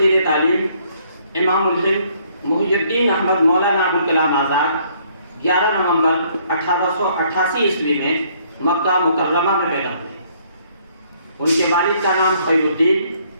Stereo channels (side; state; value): both; inverted; correlation -0.65